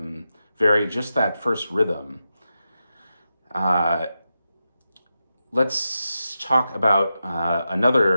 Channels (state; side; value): inverted; both; correlation -0.90